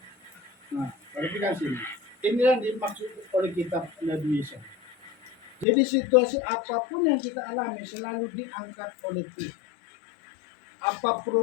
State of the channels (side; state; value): right; drops out; at 5.7 s